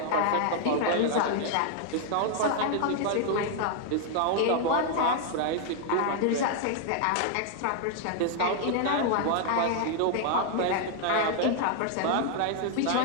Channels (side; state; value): both; different; correlation 0.00